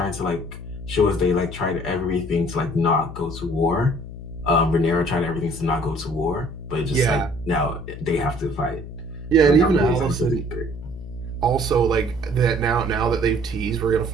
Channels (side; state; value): left; noise; hum, 11 dB below the sound